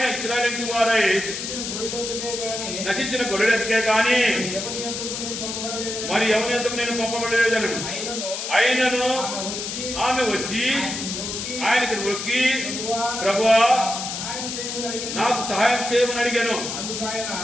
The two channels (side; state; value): left; noise; hiss, 5 dB below the sound